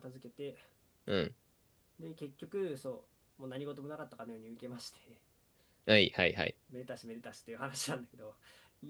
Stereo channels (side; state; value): both; identical; correlation 1.00